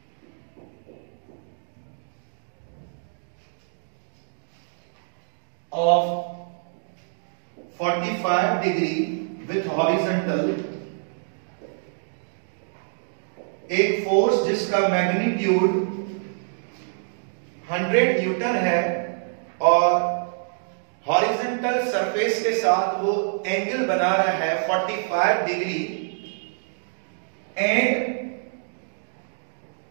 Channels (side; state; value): left; silent; digital silence